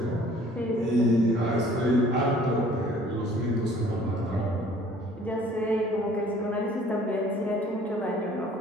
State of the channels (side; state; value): both; normal; correlation 0.54